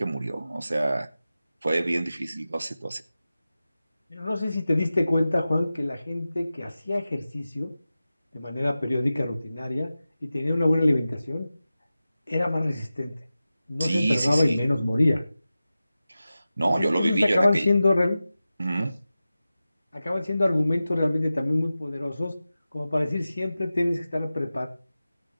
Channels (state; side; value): inverted; both; correlation -0.94